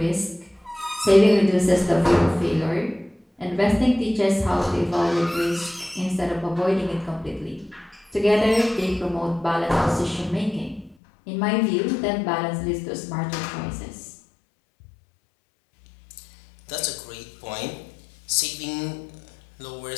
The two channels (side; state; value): right; drops out; at 11.0 s